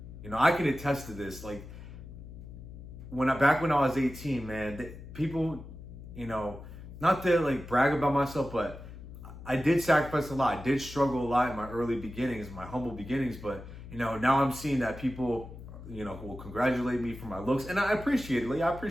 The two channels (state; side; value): noise; left; hum, 14 dB below the sound